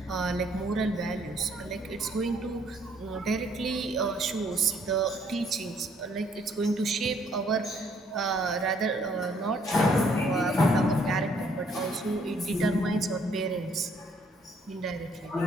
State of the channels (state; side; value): normal; both; correlation 0.66